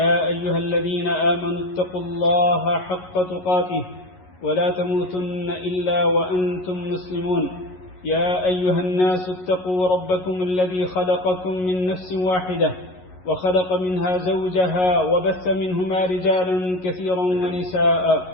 أيها الذين آمنوا اتقوا الله حق تقاته ولا تموتن إلا وأنتم مسلمون. يا أيها الناس اتقوا ربكم الذي خلقكم من نفس واحدة وخلق منها زوجها وبث منهما رجالا كثيرا ونساء،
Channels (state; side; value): late; right; 11 ms